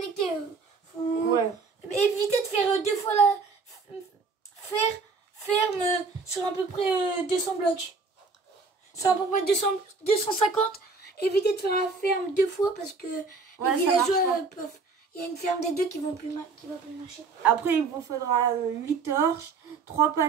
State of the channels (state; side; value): quieter; left; 4.4 dB